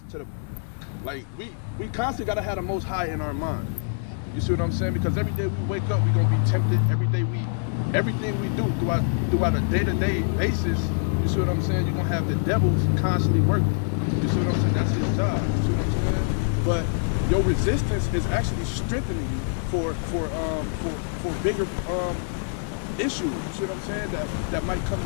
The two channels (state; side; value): silent; right; 62 dB below the other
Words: to the, like, we constantly gotta have the Most High in our mind. You see what I'm saying? Because every day we wake up, we gonna be tempted. Every day everything we do throughout a day-to-day basis, you see what I'm saying? You're gonna have the devils constantly working. You see what I'm saying? That's his job. You see what I'm saying? But your resistance is actually strengthening you for bigger issues. You see what I'm saying? That might come in